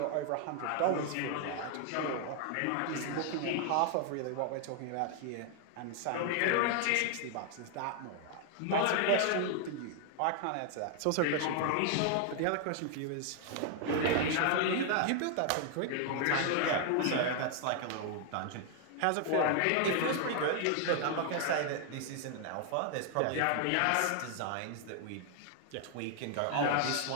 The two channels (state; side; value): different; both; correlation 0.00